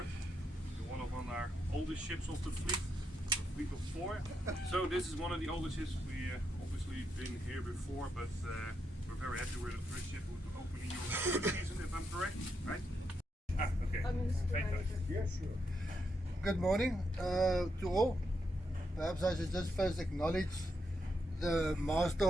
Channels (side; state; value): both; normal; correlation 0.82